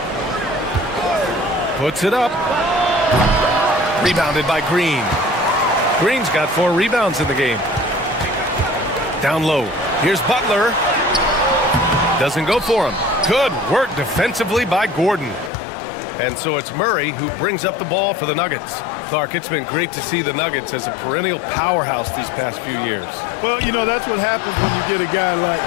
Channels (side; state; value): right; drops out; at 15.5 s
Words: Puts it up. Rebounded by Green. Green's got 4 rebounds in the game. Down low. Here's Butler. Doesn't go for him. Good work defensively by Gordon. And so it's Murray who brings up the ball for the Nuggets. Clark, it's been great to see the Nuggets as a perennial powerhouse these past few years. Well, you know, that's what happens when you get a guy like